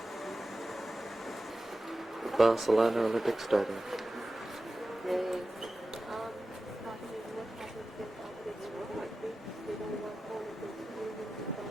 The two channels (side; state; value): both; normal; correlation 0.94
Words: Barcelona Olympic Stadium.